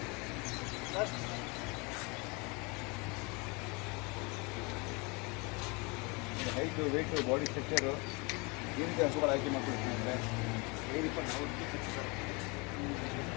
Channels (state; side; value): quieter; right; 28.2 dB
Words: ಹೈಟು ವೆಯ್ಟು ಬಾಡಿ ಸ್ಟ್ರಕ್ಚರು ಈ ರೀತಿ ಹಸುಗಳು ಆಯ್ಕೆ ಮಾಡ್ಕೊಳ್ತೀನಿ ಅಂದರೆ ಏನಿಪ್ಪ ನಾವು